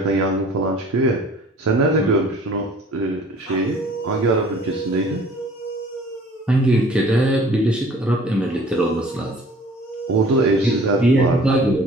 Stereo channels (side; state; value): both; normal; correlation 0.50